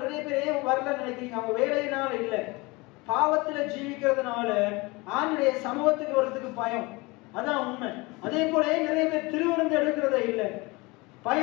நிறைய பேர் ஏன் வரலன்னு நினைக்கிறீங்க? அவங்க வேலையினால இல்லை, பாவத்துல ஜீவிக்கிறதுனால ஆண்டுடைய சமூகத்துக்கு வர்றதுக்கு பயம். அதான் உண்மை. அதே போல நிறைய பேர் திருவிருந்து எடுக்கிறதே இல்லை,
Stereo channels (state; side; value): quieter; right; 24.5 dB